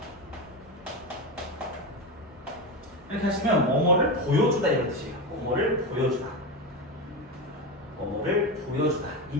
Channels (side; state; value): both; normal; correlation 0.18